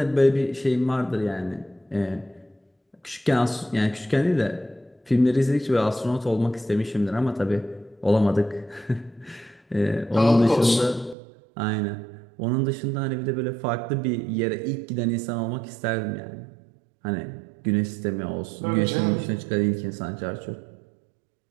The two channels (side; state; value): left; drops out; at 11.2 s